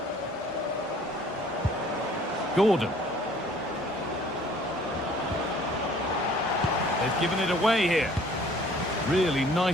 Gordon. They've given it away here. Really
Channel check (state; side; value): normal; both; correlation 0.55